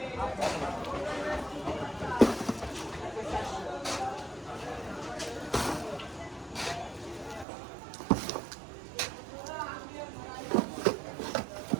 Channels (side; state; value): left; drops out; at 7.5 s